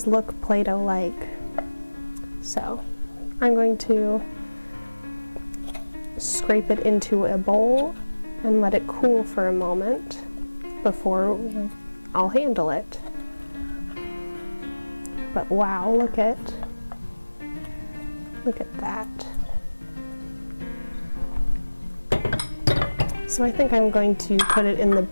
look Play-Doh-like. So I'm going to scrape it into a bowl and let it cool for a moment before I'll handle it. But wow, look at that. So I think I'm going to put it in the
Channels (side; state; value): both; inverted; correlation -1.00